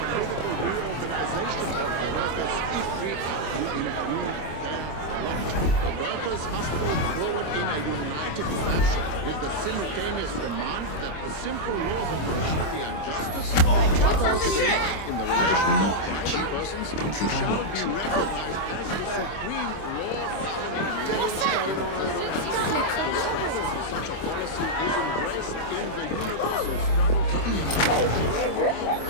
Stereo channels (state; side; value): late; right; 26 ms